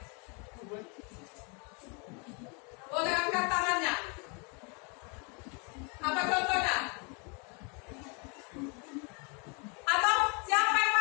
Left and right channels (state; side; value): quieter; right; 34.3 dB